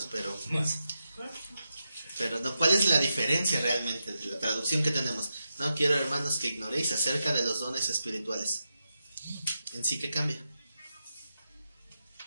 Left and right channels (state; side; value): inverted; both; correlation -0.88